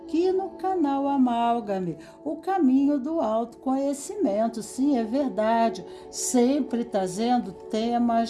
no canal Amálgame, o caminho do autoconhecimento. Sim, é verdade, sempre trazendo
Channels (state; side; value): identical; both; correlation 1.00